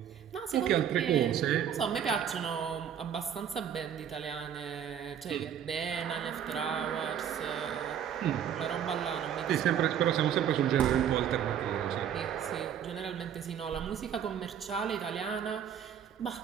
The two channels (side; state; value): left; quieter; 9.0 dB